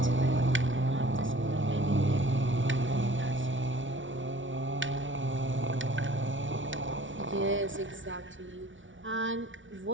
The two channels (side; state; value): left; late; 0.56 ms